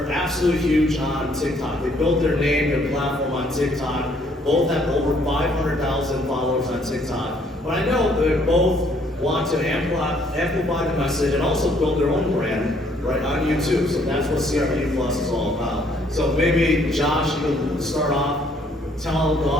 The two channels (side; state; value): both; normal; correlation 0.65